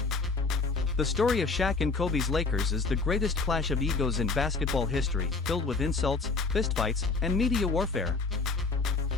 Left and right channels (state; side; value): quieter; right; 4.0 dB